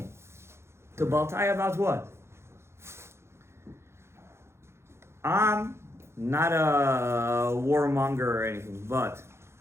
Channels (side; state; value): left; late; 0.13 ms